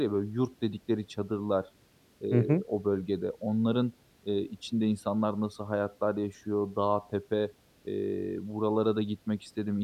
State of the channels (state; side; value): identical; both; correlation 1.00